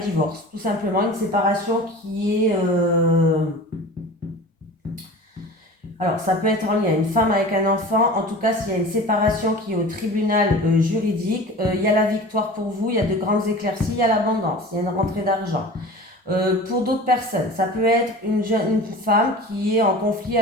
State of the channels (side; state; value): both; normal; correlation 0.37